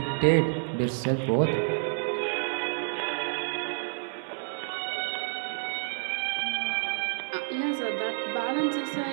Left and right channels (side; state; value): left; silent; 56 dB below the other